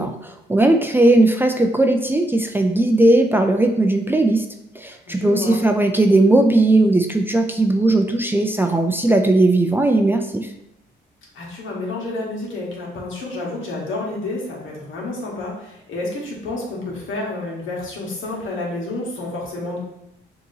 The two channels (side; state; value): both; normal; correlation 0.82